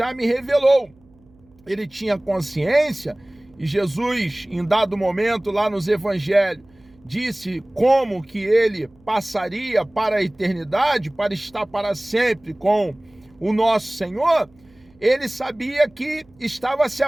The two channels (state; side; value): noise; right; hum, 30 dB below the sound